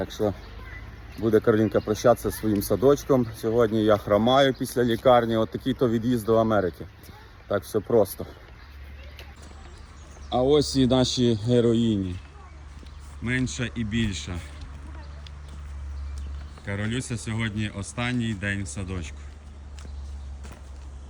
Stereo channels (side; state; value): both; identical; correlation 1.00